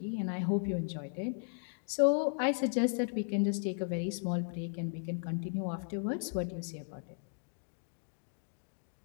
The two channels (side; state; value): right; silent; digital silence